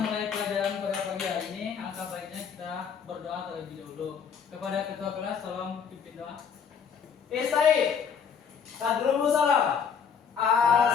pelajaran pada pagi hari ini, alangkah baiknya kita berdoa terlebih dahulu. Kepada ketua kelas, tolong pimpin doa. Istai. Tadrumu salam.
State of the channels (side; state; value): right; quieter; 6.8 dB